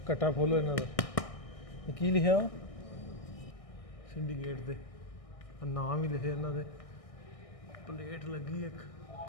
ਕੱਟਾ ਖੋਲੋ ਇਹਨਾਂ ਦਾ। ਇਹ ਕੀ ਲਿਖਿਆ ਵਾ ਸਿੰਡੀਕੇਟ ਦੇ, ਨਾਮ ਵੀ ਲਿਖੇ ਇਹਨਾਂ ਦੇ। ਪਲੇਟ ਲੱਗੀ ਇੱਕ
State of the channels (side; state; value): right; late; 1.6 ms